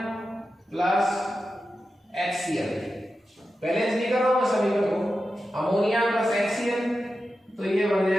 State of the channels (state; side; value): normal; both; correlation 0.91